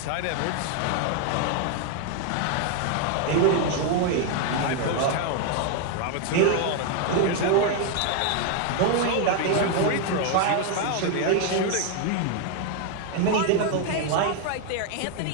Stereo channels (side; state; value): both; different; correlation 0.00